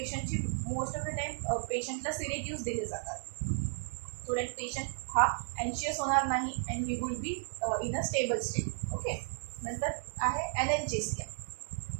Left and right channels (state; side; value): silent; left; digital silence